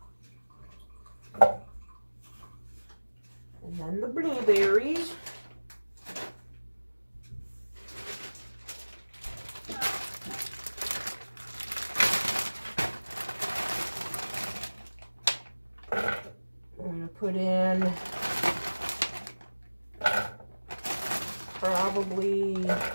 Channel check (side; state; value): both; inverted; correlation -1.00